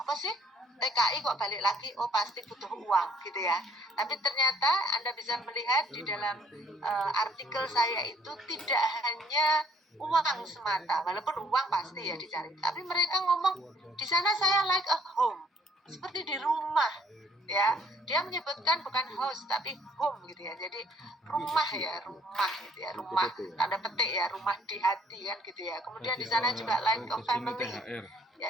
sih? TKI kok balik lagi, oh pasti butuh uang gitu ya. Tapi ternyata Anda bisa melihat di dalam artikel saya itu tidak hanya uang semata, walaupun uang pasti ya dicari. Tapi mereka ngomong di sana saya like a home, seperti di rumah ya. Dia menyebutkan bukan house tapi home gitu ya. Jadi rumah gitu ya, rumah tanda petik ya, rumah di hati kan gitu ya. Kemudian di sana juga like a family. Ya,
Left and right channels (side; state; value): both; normal; correlation 0.61